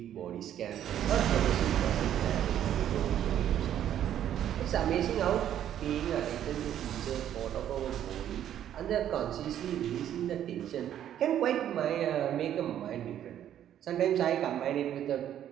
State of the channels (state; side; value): quieter; left; 10.7 dB